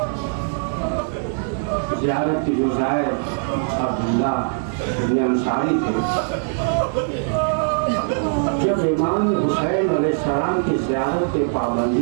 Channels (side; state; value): left; silent; digital silence